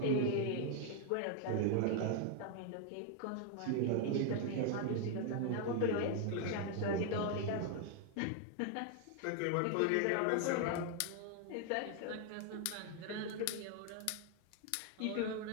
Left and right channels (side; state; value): both; different; correlation 0.00